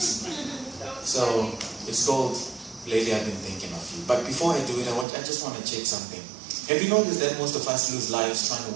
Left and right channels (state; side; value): drops out; left; at 5.1 s